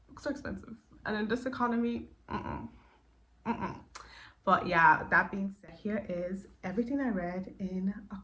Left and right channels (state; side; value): identical; both; correlation 1.00